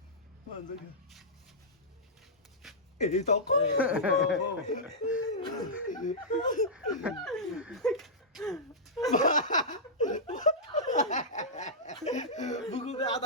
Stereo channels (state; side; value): normal; both; correlation -0.13